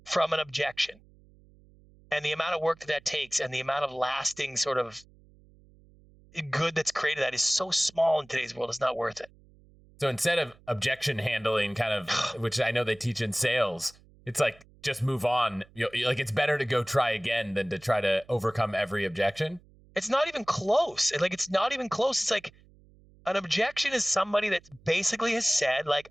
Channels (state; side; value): noise; right; hum, 27 dB below the sound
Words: from an objection, and the amount of work that takes, and the amount of lasting sort of good that's created, that is so small in today's world, it's not worth it. So instead of objection handling, kind of, which I know they teach in sales, it's like, just move on. Like, it's better to go try again than to try to overcome every objection. It's not even close. It's not even close. It's like, an objection is somebody that basically has said, like,